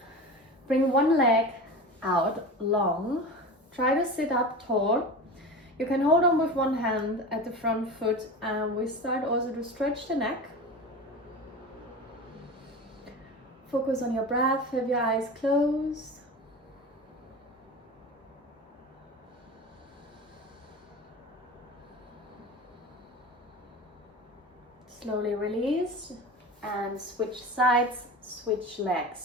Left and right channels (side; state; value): both; normal; correlation 0.30